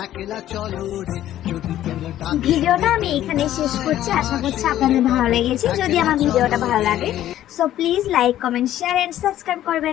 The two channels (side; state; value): right; quieter; 12.7 dB